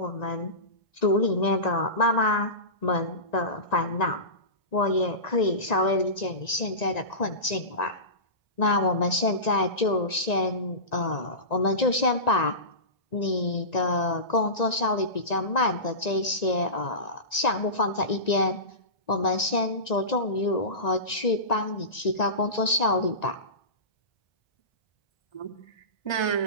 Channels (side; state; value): right; late; 1.9 ms